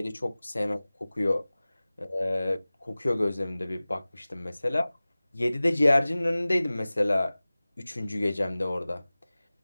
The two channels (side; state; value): both; inverted; correlation -0.98